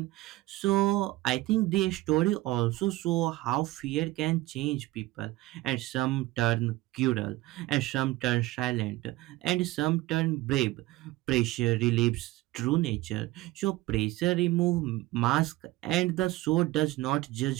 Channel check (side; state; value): left; quieter; 18.4 dB